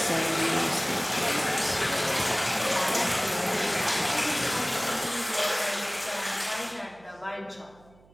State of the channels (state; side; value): noise; right; hum, 28 dB below the sound